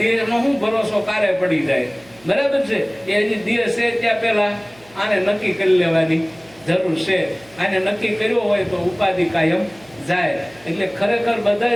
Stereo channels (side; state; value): right; noise; hum, 28 dB below the sound